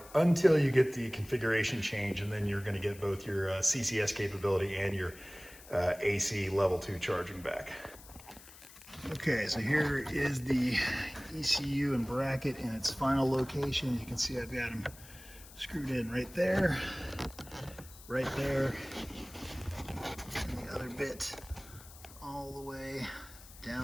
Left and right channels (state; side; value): noise; left; hiss, 19 dB below the sound